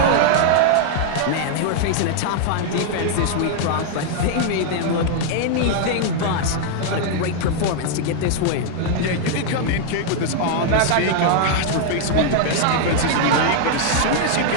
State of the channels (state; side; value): different; both; correlation 0.00